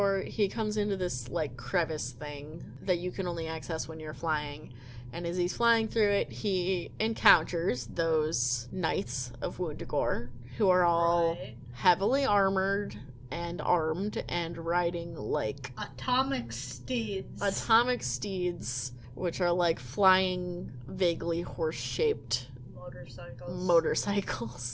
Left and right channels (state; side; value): identical; both; correlation 1.00